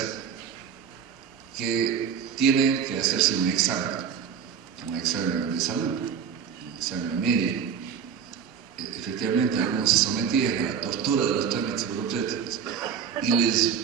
Que tienen que hacerse un examen de salud, un examen médico. Efectivamente, algunos se sometían a la tortura de los trámites burocráticos y les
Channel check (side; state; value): left; quieter; 7.4 dB